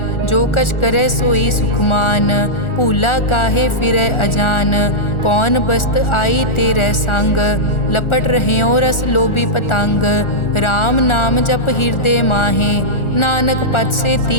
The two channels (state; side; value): late; right; 1.4 ms